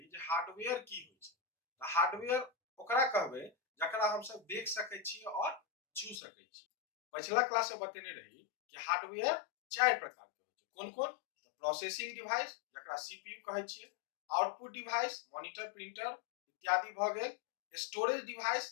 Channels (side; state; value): right; drops out; at 6.2 s